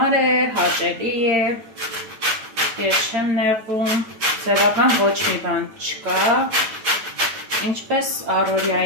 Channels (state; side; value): late; left; 9.0 ms